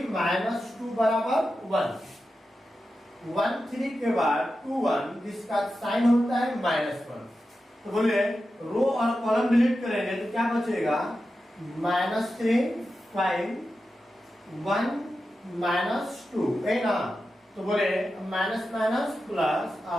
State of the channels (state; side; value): normal; both; correlation 0.91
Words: - 2 = 1, 1 3 के बाद 2 1, जिसका साइन होता है -1। तो बोले रो और कॉलम डिलीट करेंगे तो क्या बचेगा -3 5 1 -2 है ना। तो बोले माइनस माइनस प्लस